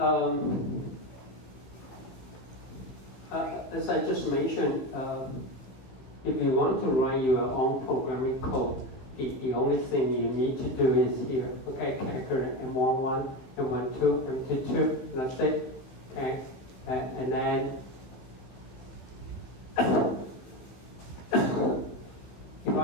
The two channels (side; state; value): right; late; 16 ms